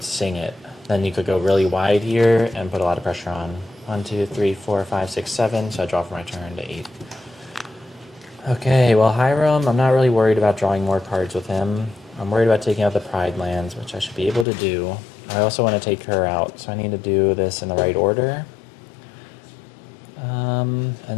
sing it. Then you could go really wide here and put a lot of pressure on. 1, 2, 3, 4, 5, 6, 7. So I draw for my turn to 8. Okay, well, Hiram, I'm not really worried about drawing more cards with him. I'm worried about taking out the Pride lands, which I should be able to do. I also want to take her out, so I need to do this in the right order. And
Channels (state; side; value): drops out; right; at 14.5 s